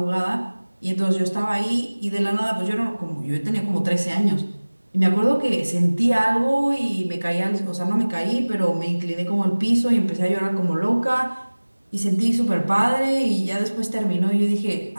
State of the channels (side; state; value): both; inverted; correlation -1.00